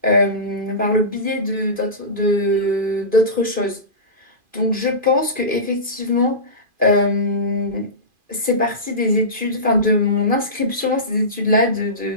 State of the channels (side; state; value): left; late; 2.4 ms